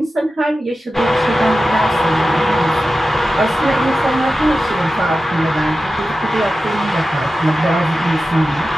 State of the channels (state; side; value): normal; both; correlation 0.93